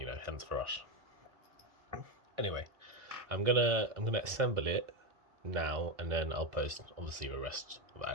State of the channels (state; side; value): late; left; 2.0 ms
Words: hence the rush. Anyway, I'm gonna assemble it now, and then I'll post obviously the rest of the